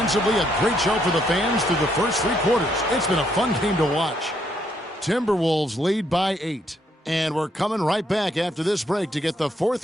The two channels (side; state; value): both; normal; correlation 0.73